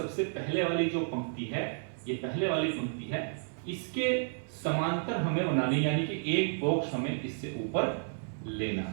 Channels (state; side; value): silent; left; 57 dB below the other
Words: पहले वाली जो पंक्ति है, ये पहले वाली पंक्ति है, इसके समांतर हमें बनानी, यानी कि एक बॉक्स हमें इससे ऊपर लेना